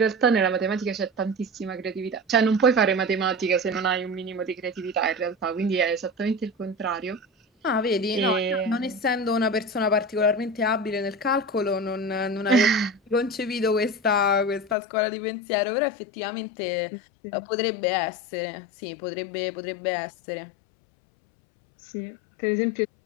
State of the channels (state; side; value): drops out; right; at 14.8 s